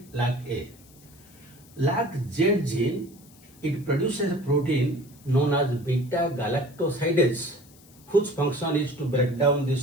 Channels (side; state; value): left; noise; hiss, 25 dB below the sound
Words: LAC-A. LAC-Z gene, it produces a protein known as beta galactosidase, whose function is to break down